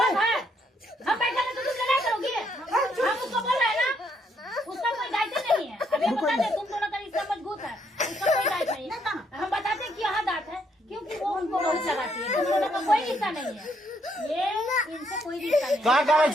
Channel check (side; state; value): both; normal; correlation 0.72